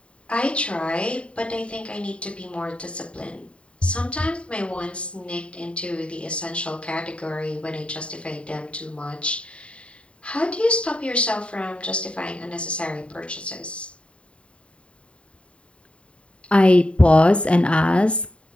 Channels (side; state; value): right; late; 0.060 ms